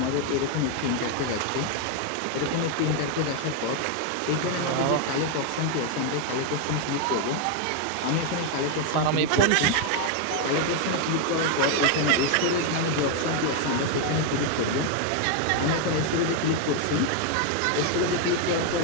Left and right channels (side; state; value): both; different; correlation 0.01